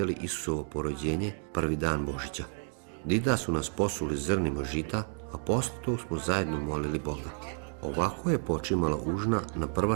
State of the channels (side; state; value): left; silent; 57 dB below the other